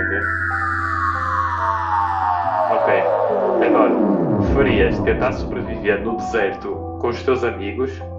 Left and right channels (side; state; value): both; identical; correlation 1.00